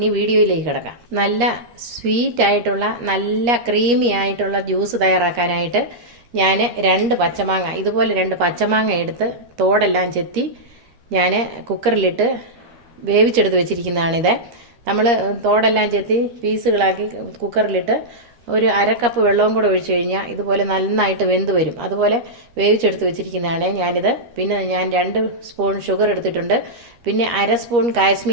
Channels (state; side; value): late; left; 13 ms